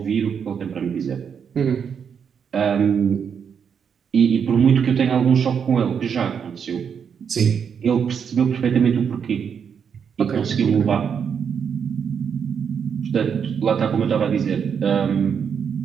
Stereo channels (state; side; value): quieter; left; 7.1 dB